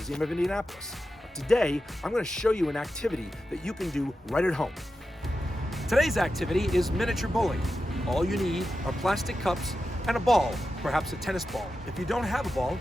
of Indianapolis. Today, I'm going to show you an activity that you can do right at home. Today's activity is miniature bowling. All you need are plastic cups and a ball, perhaps a tennis ball. If you don't have a ball,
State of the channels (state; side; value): normal; both; correlation 0.91